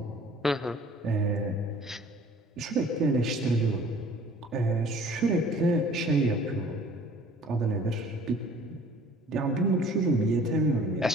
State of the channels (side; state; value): both; normal; correlation 0.51